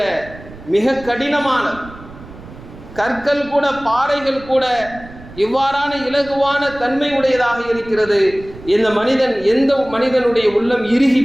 மிக கடினமானது. கற்கள் கூட, பாறைகள் கூட இவ்வாறான இலகுவான தன்மை உடையதாக இருக்கிறது. எந்த மனிதனுடைய உள்ளம் இறுகி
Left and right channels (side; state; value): right; noise; rumble, 18 dB below the sound